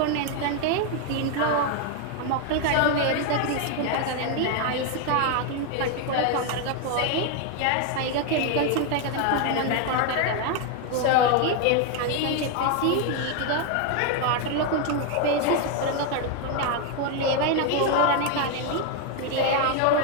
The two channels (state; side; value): different; both; correlation 0.01